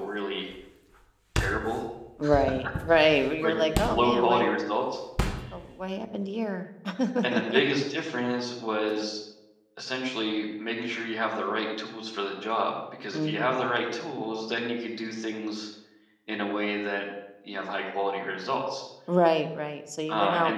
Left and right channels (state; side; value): identical; both; correlation 1.00